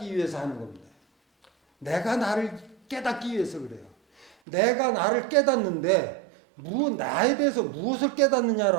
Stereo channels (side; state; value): left; drops out; at 4.3 s